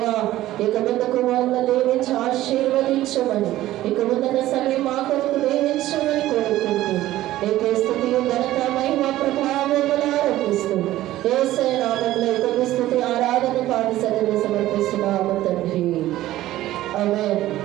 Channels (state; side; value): quieter; left; 15.0 dB